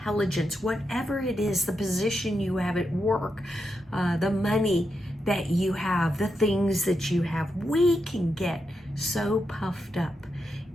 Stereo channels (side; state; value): both; normal; correlation 0.85